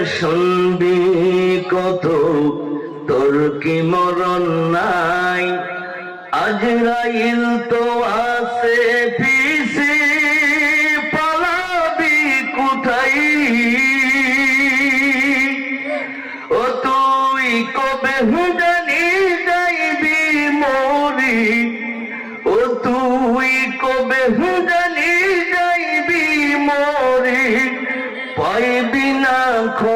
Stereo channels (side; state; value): both; identical; correlation 1.00